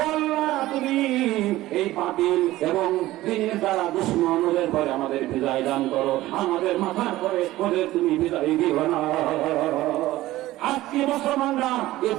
তুমি এই বাতিল এবং দিনের দ্বারা দুশ্মন ওদের পরে আমাদের বিজয় দান করো, আমাদের মাথার পরে ওদের তুমি বিজয় দিও না। আজকে মুসলমানরা এ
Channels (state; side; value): quieter; left; 16.4 dB